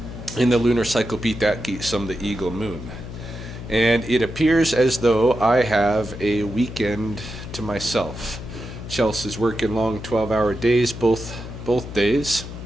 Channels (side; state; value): left; noise; hum, 10 dB below the sound